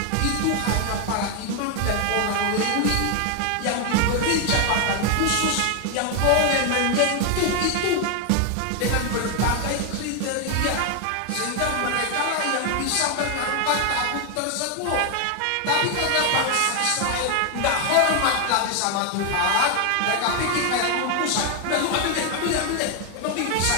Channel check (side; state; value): both; different; correlation 0.01